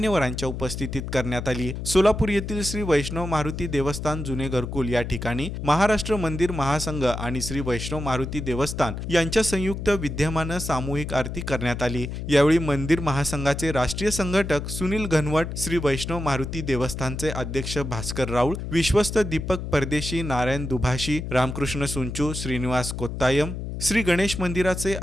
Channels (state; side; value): noise; left; hum, 6 dB below the sound